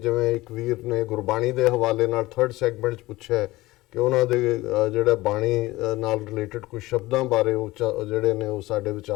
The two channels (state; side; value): quieter; right; 18.9 dB